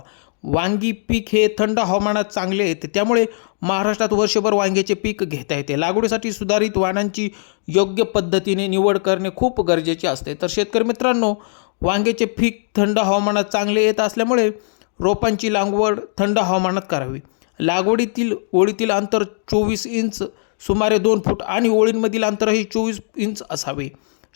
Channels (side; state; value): right; silent; digital silence